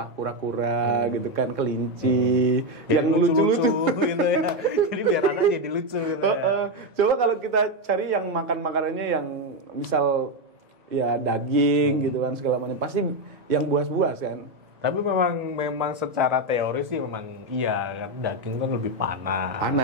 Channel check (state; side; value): late; left; 2.0 ms